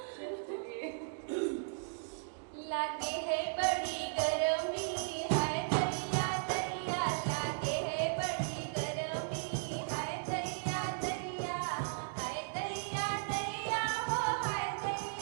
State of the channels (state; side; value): silent; left; digital silence